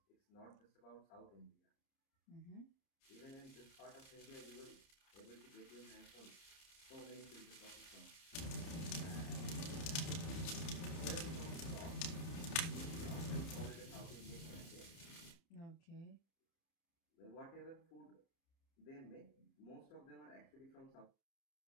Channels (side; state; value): right; late; 30 ms